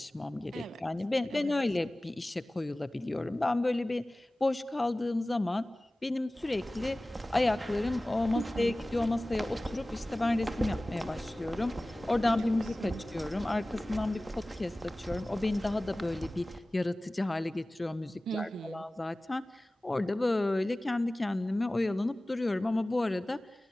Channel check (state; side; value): normal; both; correlation 0.98